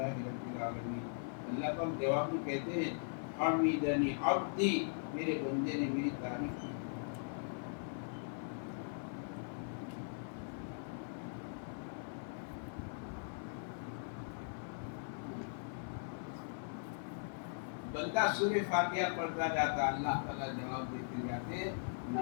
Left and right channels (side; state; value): right; silent; 51 dB below the other